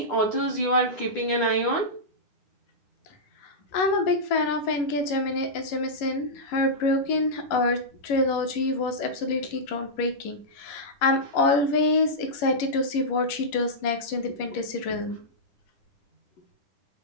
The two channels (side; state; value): right; late; 11 ms